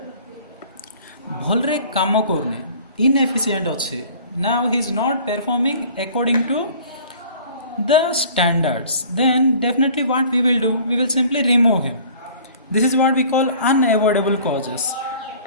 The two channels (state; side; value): inverted; both; correlation -0.49